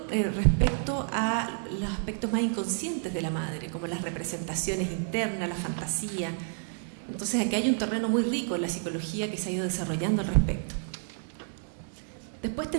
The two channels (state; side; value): silent; left; digital silence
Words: respecto a los aspectos más inconscientes de la madre, como las representaciones internas, la fantasía. Entonces aquí hay un terreno muy rico en la psicología que se ha ido desarrollando al respecto. Después